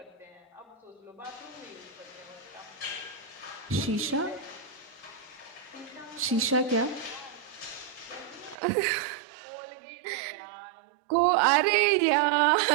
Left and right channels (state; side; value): drops out; left; at 8.6 s